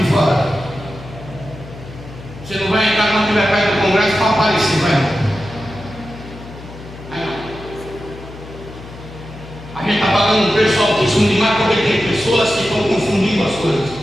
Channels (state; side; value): noise; left; hum, 15 dB below the sound